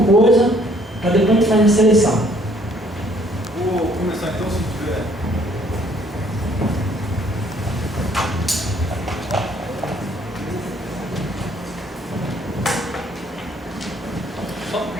coisa, para depois a gente fazer a seleção. Vou começar então, se tiver.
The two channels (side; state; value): both; normal; correlation 0.62